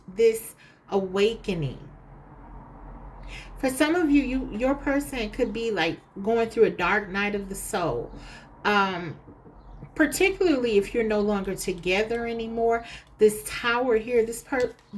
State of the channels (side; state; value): both; identical; correlation 1.00